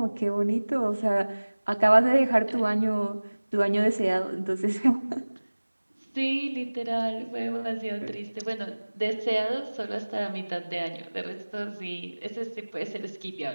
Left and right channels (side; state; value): both; inverted; correlation -1.00